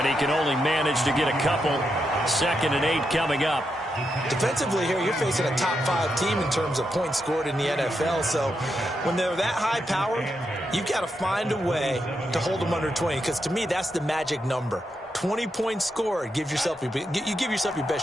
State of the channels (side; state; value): both; normal; correlation 0.84